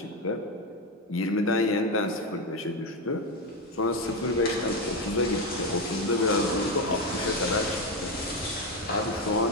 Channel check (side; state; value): both; normal; correlation 0.11